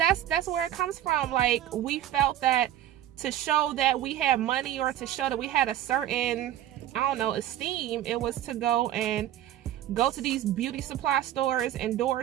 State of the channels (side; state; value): left; quieter; 12.2 dB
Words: where it comes from. Like, we felt that to show that we had money, or to show that we had a certain, I don't know, esteem. It was to go to these beauty supply stores,